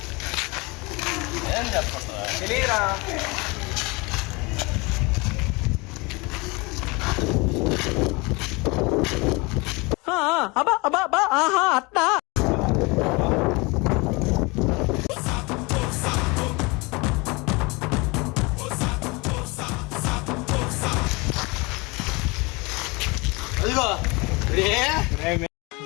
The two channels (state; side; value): quieter; right; 26.4 dB